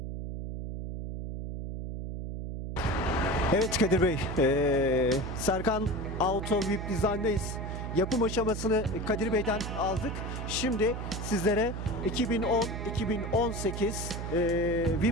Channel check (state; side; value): noise; right; hum, 5 dB below the sound